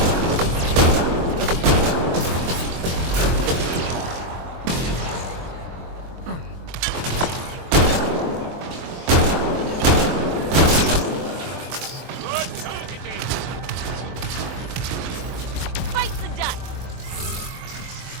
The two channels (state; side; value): late; left; 23 ms